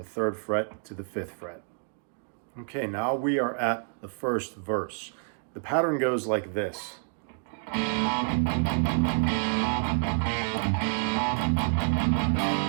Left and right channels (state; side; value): silent; left; 59 dB below the other